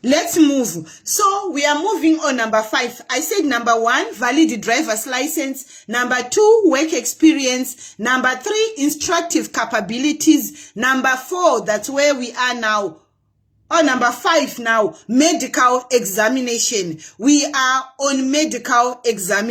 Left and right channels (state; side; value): identical; both; correlation 1.00